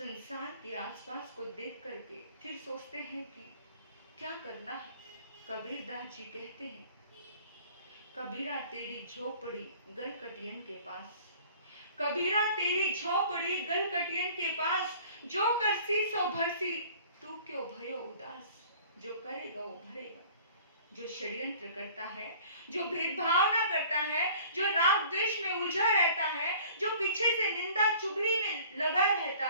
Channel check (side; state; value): both; inverted; correlation -0.49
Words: के आसपास को देख करके, फिर सोचते हैं कि क्या करना है। कबीरदास जी कहते हैं, कबीरा तेरी झोपड़ी गलकटियन के पास, कबीरा तेरी झोपड़ी गलकटियन के पास, जो करसी सो भरसी तू क्यों भयो उदास। जो करेगा वो भरेगा। जो षड्यंत्र करता है, जो भेदभाव ना करता है, जो राग द्वेष में उलझा रहता है, जो पीछे से निंदा चुगली में लगा रहता